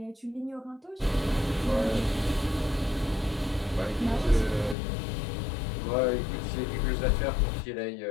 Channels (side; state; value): right; drops out; at 4.8 s